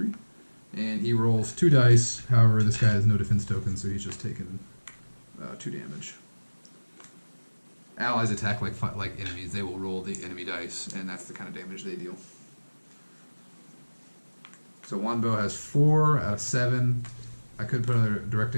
And he rolls 2 dice. However, this guy has no defense tokens, so he's just taking 2 damage. Allies attack like enemies. They will roll the enemy dice, and that's the kind of damage they deal. So Wanbo has 4 out of 7. I could put another direct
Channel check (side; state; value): both; inverted; correlation -1.00